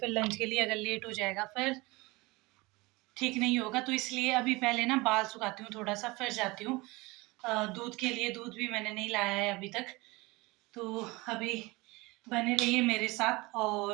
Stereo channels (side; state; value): left; quieter; 23.2 dB